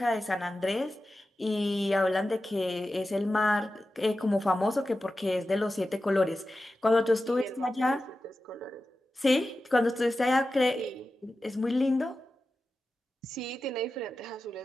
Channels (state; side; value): normal; both; correlation 0.93